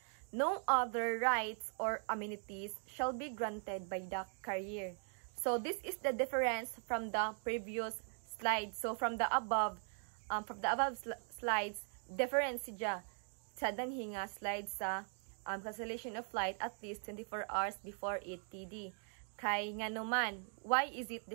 no other rights or amenities shall be granted by the carrier. So this is the difference from the previous slide. So from the above slides, difference siya sa danhi nga slide sa cancellation of flight at least 24 hours before it TD. Kay nga naman, why is it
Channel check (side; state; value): left; silent; 51 dB below the other